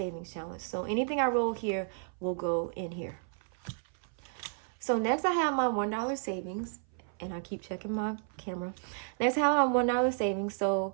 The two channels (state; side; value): silent; left; 56 dB below the other